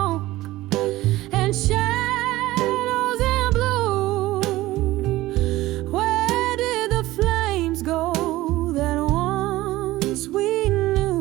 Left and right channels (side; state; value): left; quieter; 17.2 dB